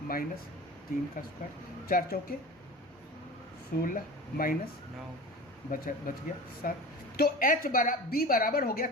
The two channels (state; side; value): normal; both; correlation 0.34